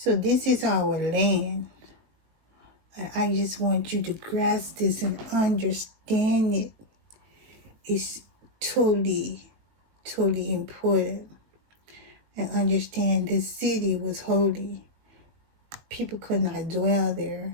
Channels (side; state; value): left; late; 19 ms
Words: this is our land. I just want you to grasp this and understand it. It's totally, totally important. And understand this city was holy. People could not dwell